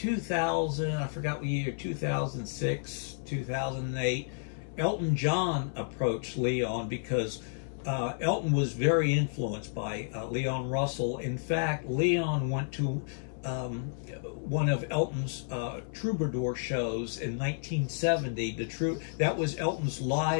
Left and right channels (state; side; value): silent; right; 57 dB below the other